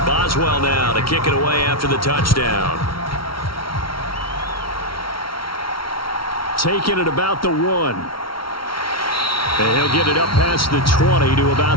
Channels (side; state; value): right; late; 0.74 ms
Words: Boswell now to kick it away after the touchdown. Taking it about the 1. And he'll get it up past the 20 to